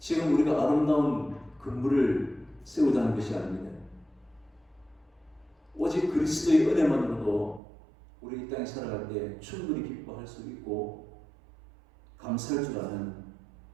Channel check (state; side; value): drops out; left; at 7.6 s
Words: 우리가 아름다운 건물을 세우자는 것이 아닙니다. 오직 그리스도의 은혜만으로도 우리 이 땅에 살아갈 때 충분히 기뻐할 수 있고 감사할 줄 아는